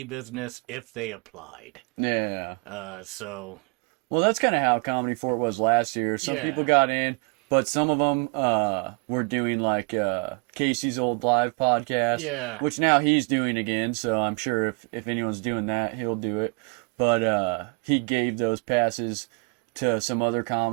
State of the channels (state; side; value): quieter; left; 34.8 dB